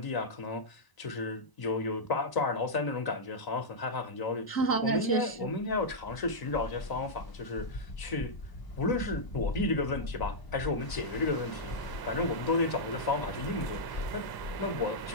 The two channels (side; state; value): right; late; 1.0 ms